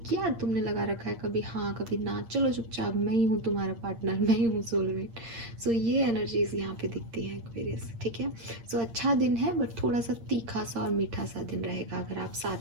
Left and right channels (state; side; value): late; left; 8.7 ms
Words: क्या तुमने लगा रखा है, कभी हाँ कभी ना, चलो चुपचाप, मैं ही हूँ तुम्हारा पार्टनर, मैं ही हूँ सोलमेट। सो ये एनर्जीज यहाँ पे दिखती है एक्वेरियस, ठीक है। सो अच्छा दिन है, बट थोड़ा सा तीखा सा और मीठा सा दिन रहेगा अगर आप